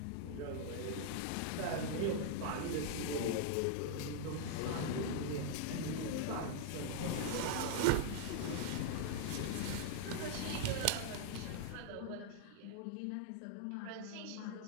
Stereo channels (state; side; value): different; both; correlation -0.01